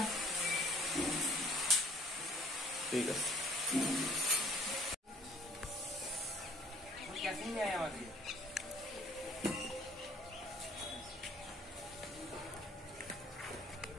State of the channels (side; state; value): both; normal; correlation 0.56